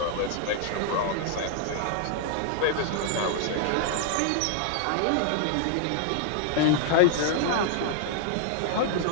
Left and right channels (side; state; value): both; different; correlation 0.00